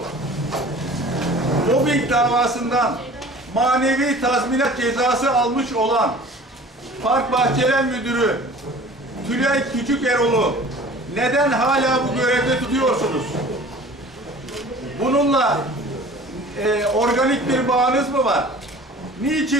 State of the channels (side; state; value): both; normal; correlation 0.44